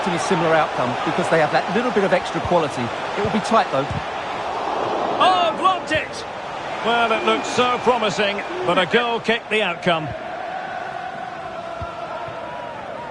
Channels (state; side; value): identical; both; correlation 1.00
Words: a similar outcome because they have that little bit of extra quality. It will be tight, though. Oh, blocked it! Well, it looked so promising, but a goal kicked the outcome.